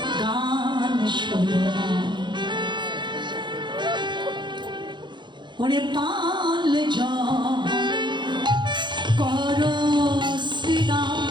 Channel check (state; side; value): late; left; 0.22 ms